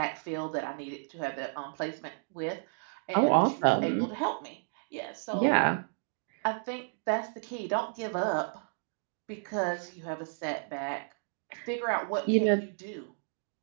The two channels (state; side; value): silent; left; digital silence